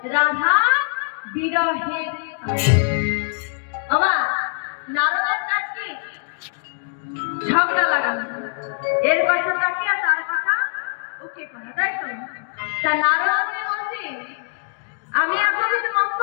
রাধা বিরহের আমার নারদের কাজ কি ঝগড়া লাগানো, এর কথা তাকে আর তার কথা ওকে করা, তাই তো? তা নারদ বলছি আমি এতদিন মন্ত্র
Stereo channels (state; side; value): silent; right; digital silence